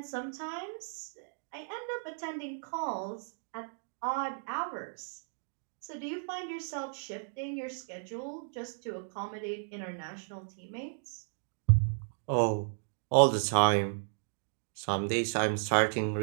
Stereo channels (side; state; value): left; silent; digital silence